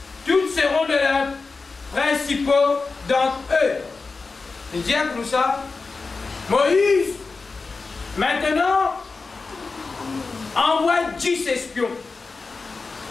Toutes seront de leurs principaux d'entre eux. Il dit comme ça, Moïse, maintenant, envoie 10 espions.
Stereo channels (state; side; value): quieter; right; 4.2 dB